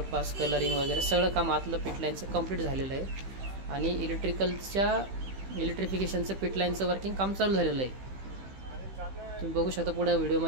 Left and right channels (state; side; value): late; left; 15 ms